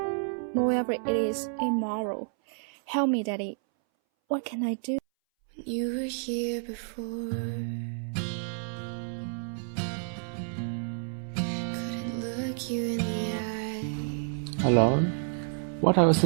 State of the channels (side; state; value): left; silent; 58 dB below the other